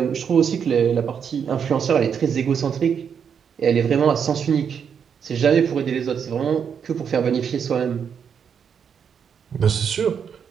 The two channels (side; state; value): left; quieter; 7.3 dB